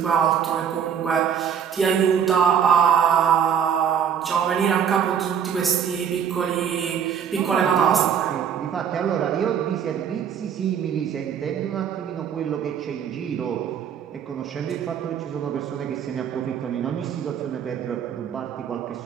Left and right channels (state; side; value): quieter; left; 8.1 dB